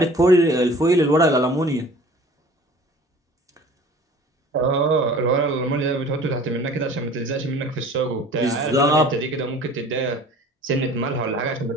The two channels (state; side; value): normal; both; correlation 0.46